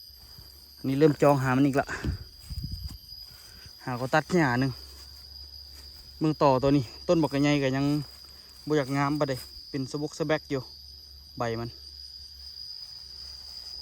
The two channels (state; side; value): identical; both; correlation 1.00